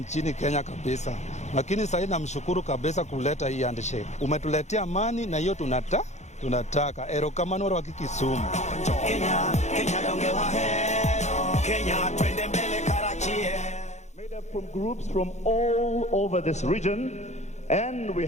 Kenya kabisa. Lakini sasa namshukuru kabisa kuleta hii handshake. Umetuletea amani na hiyo tunataka. Erokamano wa Kisumu. Made up from groups from all over this region. And we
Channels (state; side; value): late; right; 0.33 ms